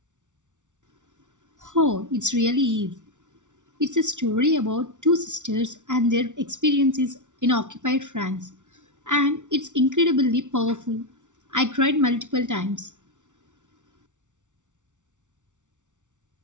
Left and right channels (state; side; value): late; left; 0.86 ms